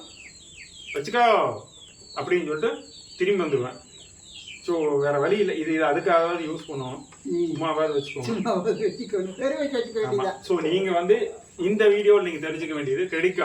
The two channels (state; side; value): identical; both; correlation 1.00